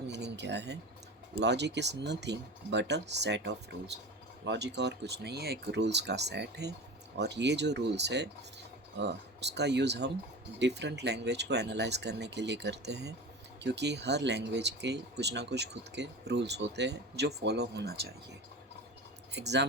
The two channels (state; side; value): normal; both; correlation 0.31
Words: मीनिंग क्या है? Logic is nothing but a set of rules. Logic और कुछ नहीं है, एक रूल्स का सेट है। और ये जो रूल्स है उसका यूज़ हम डिफरेंट लैंग्वेज को एनालाइज करने के लिए करते हैं, क्योंकि हर लैंग्वेज के कुछ ना कुछ खुद के रूल्स होते हैं जो फॉलो होना चाहिए।